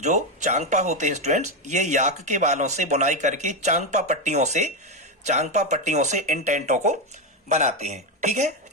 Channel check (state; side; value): normal; both; correlation 0.09